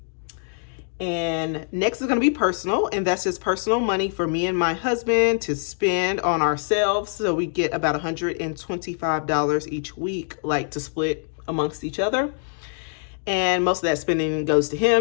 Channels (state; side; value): silent; right; digital silence